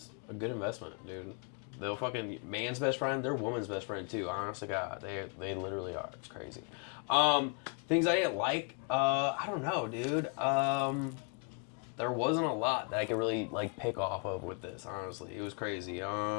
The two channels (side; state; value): right; quieter; 39.3 dB